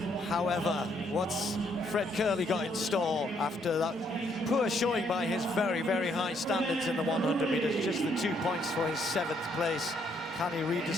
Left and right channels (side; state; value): both; normal; correlation 0.71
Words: However, what's Fred Curley got in store after that poor showing by his very, very high standards in the 100 meters? Just the 2 points for his 7th place. Can he